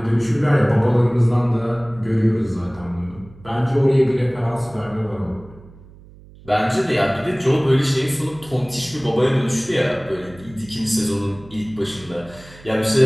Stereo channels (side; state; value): right; noise; hum, 22 dB below the sound